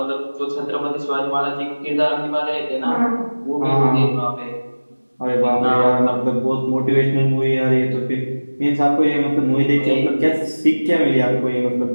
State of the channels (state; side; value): inverted; both; correlation -1.00